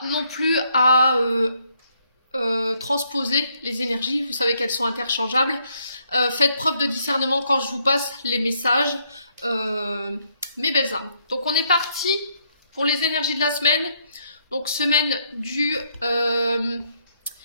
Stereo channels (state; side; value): inverted; both; correlation -0.72